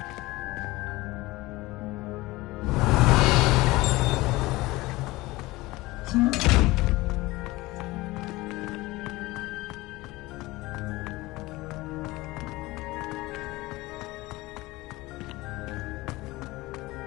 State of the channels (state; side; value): quieter; right; 20.2 dB